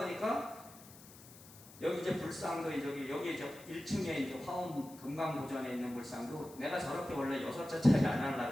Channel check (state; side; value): noise; left; hiss, 20 dB below the sound